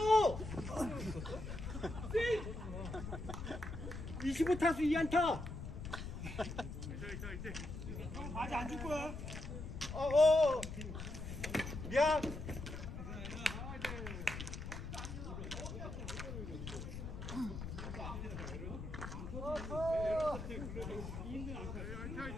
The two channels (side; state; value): left; noise; rumble, 7 dB below the sound